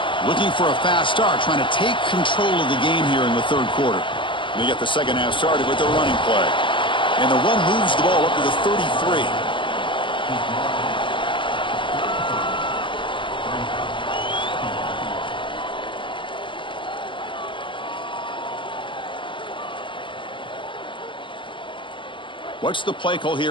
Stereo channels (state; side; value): late; right; 0.24 ms